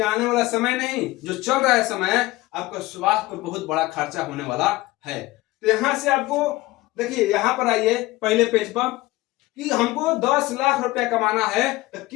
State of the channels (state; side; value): quieter; right; 19.1 dB